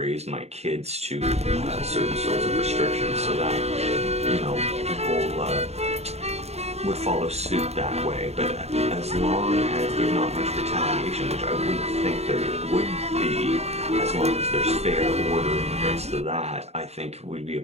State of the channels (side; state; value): left; late; 0.31 ms